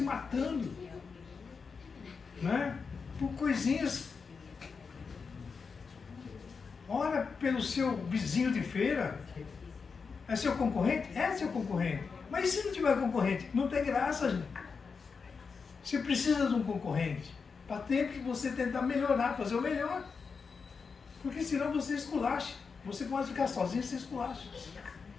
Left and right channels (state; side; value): quieter; right; 5.3 dB